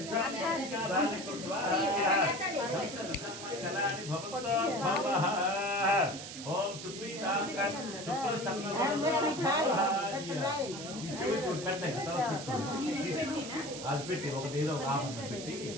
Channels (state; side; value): noise; right; hiss, 10 dB below the sound